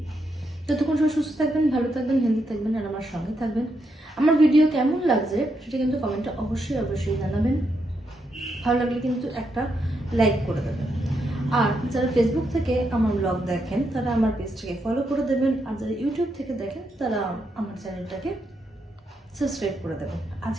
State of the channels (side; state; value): both; normal; correlation 0.80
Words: ততক্ষণ সবাই সুস্থ থাকবেন, ভালো থাকবেন, হেলদি থাকবেন, আর আমার সঙ্গে থাকবেন। আমার ভিডিও কেমন লাগছে সেটা কিন্তু কমেন্টে অবশ্যই জানাবেন। ভালো লাগলে কিন্তু একটা লাইক করে দেবেন। আর যারা ফেসবুক থেকে আমার ব্লগ দেখেন তারা আমার পেজটাকে ফলো করে দেবেন, আর যারা ইউটিউব থেকে দেখেন তারা আমার চ্যানেলটাকে সাবস্ক্রাইব করে দেবেন।